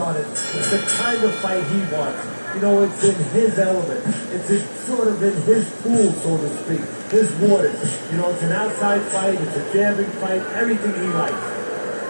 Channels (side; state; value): both; inverted; correlation -1.00